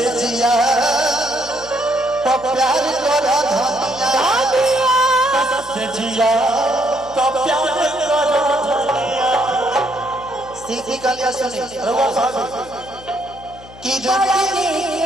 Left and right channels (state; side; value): noise; left; hum, 20 dB below the sound